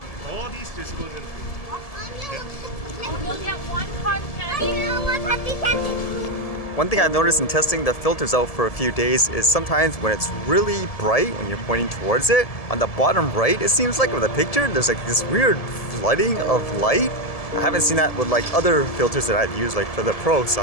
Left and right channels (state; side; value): late; right; 1.7 ms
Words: All these just go in. You'll get one cotton candy. One thing I've noticed in testing the filters out for a few days is sometimes when it's really bright, when you're pointing towards it, on the bottom right, it seems like with a picture, there's like this weird flooding of light. I haven't seen that with like other filters that I've used like for the Pro, so